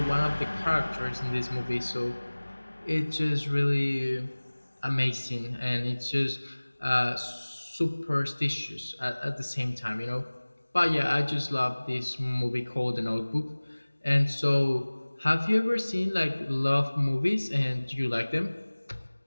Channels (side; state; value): both; inverted; correlation -1.00